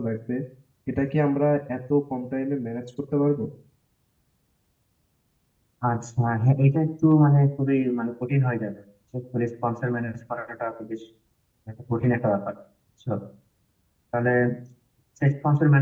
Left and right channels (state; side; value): identical; both; correlation 1.00